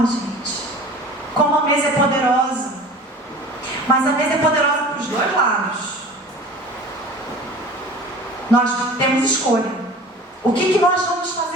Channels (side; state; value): both; normal; correlation 0.41